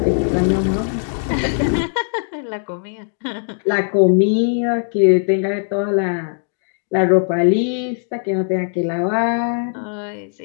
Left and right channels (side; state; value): right; silent; digital silence